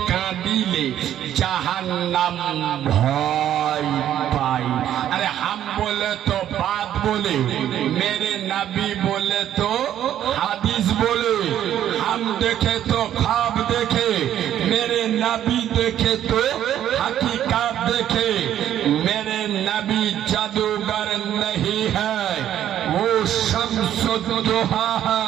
কাঁদিলে জাহান্নাম ভয় পায়। अरे हम बोले तो बात बोले, मेरे नबी बोले तो हदीस बोले, हम देखे तो ख्वाब देखे, मेरे नबी देखे तो हकीकत देखे, मेरे नबी जादूगर नहीं है, वो शम्सुद्दोहा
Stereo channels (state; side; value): quieter; left; 11.1 dB